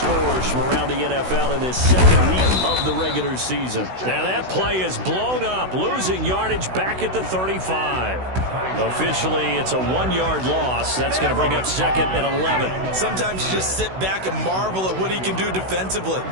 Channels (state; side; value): late; left; 16 ms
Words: from around the NFL in this second week of the regular season. Now that play is blown up, losing yardage back at the 35. Officially, it's a 1-yard loss. That's going to bring up second and 11. Sometimes you just sit back and marvel at what he can do defensively.